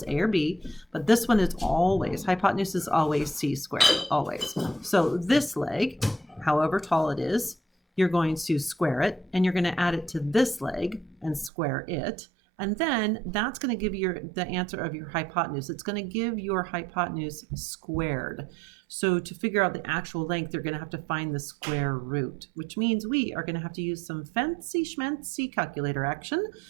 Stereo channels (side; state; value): left; drops out; at 11.5 s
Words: A or B, but this one is always, hypotenuse is always c squared, always. So this leg, however tall it is, you're going to square it, and you're going to add it to this leg and square it. And then that's going to give you the answer of your hypotenuse. It's going to give your hypotenuse squared. So to figure out the actual length, you're going to have to find the square root, which means we are going to have to use some fancy schmancy calculator action.